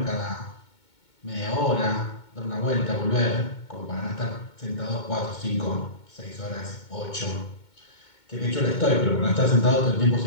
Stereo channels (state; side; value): late; right; 2.2 ms